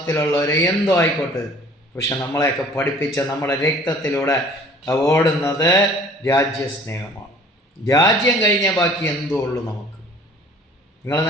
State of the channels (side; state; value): both; normal; correlation 0.51